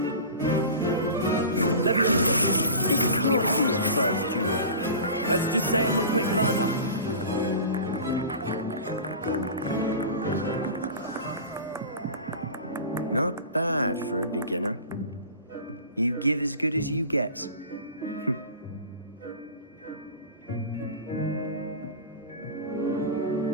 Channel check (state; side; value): inverted; both; correlation -0.35